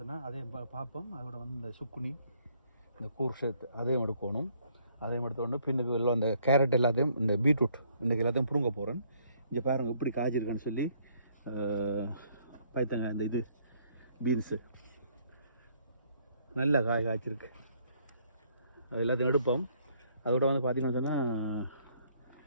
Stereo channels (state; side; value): inverted; both; correlation -0.66